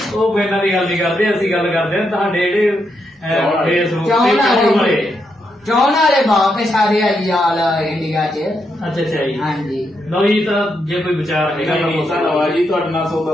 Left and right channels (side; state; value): both; normal; correlation 0.81